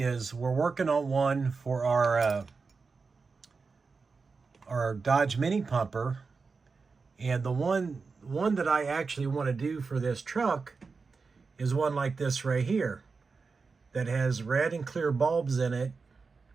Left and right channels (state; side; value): quieter; left; 4.6 dB